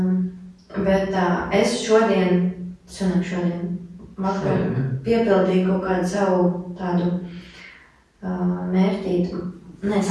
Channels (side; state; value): both; identical; correlation 1.00